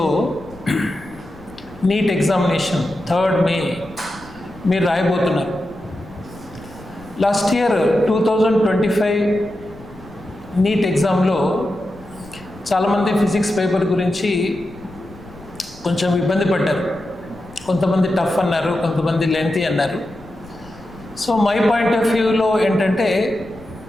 NEET examination 3rd May మీరు రాయబోతున్నారు. Last year 2025 neat ఎగ్జామ్లో చాలామంది physics paper గురించి కొంచెం ఇబ్బంది పడ్డారు. కొంతమంది టఫ్ అన్నారు, కొంతమంది లెంతీ అన్నారు. సో మై పాయింట్ ఆఫ్ వ్యూలో ఏంటంటే,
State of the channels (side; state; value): left; noise; rumble, 21 dB below the sound